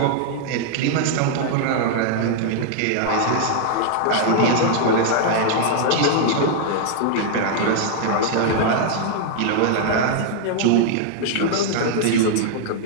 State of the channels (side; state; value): both; different; correlation -0.01